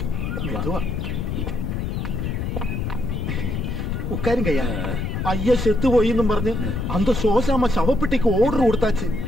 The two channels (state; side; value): noise; left; rumble, 2 dB below the sound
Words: மெதுவா ഉക്കാരുങ്കയ്യ. അയ്യ സെത്തു പോയിന്നും പറഞ്ഞ് അന്ത சோசாம ശവപ്പെട്ടിക്ക് ഓർഡർ കൊടുത്താச்சு.